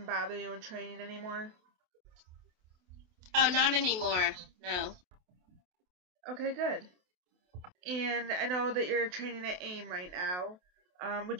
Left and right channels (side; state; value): left; late; 28 ms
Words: bother you in training anymore? Oh, not anymore. No. Okay, good. And I know that you're training at AIM right now.